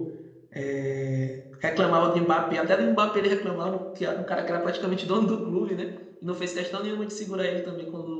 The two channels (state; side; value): identical; both; correlation 1.00